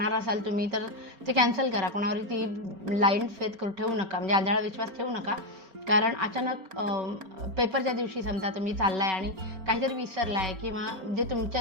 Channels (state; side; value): late; left; 4.4 ms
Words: असाल तुम्ही, तर ते कॅन्सल करा. कोणावर ती ब्लाइंड फेथ ठेवू नका, म्हणजे आंधळा विश्वास ठेवू नका, कारण अचानक पेपरच्या दिवशी समजा तुम्ही चाललाय आणि काहीतरी विसरलाय किंवा जे